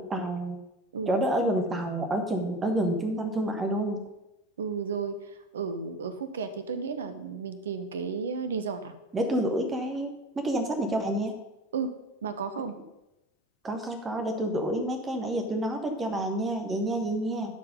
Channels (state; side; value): normal; both; correlation 0.37